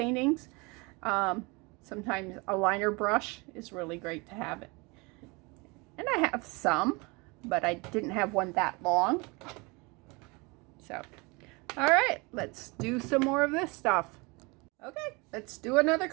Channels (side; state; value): left; quieter; 27.3 dB